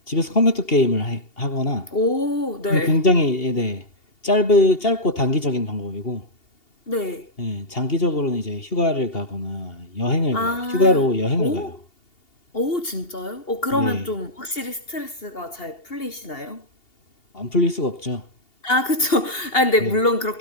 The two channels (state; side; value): late; right; 2.8 ms